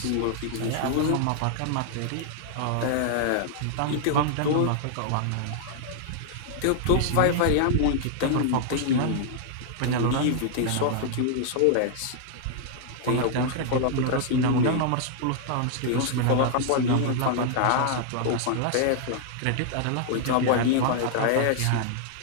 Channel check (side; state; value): both; different; correlation -0.01